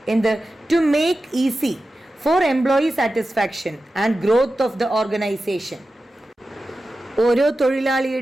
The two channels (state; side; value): normal; both; correlation 0.93